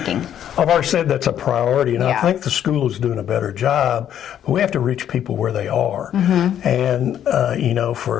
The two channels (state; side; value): quieter; right; 10.2 dB